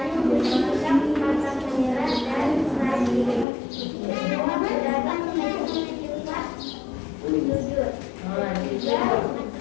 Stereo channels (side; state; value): right; drops out; at 3.5 s